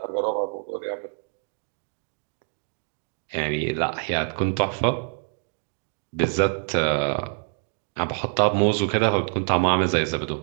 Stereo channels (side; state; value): left; silent; 58 dB below the other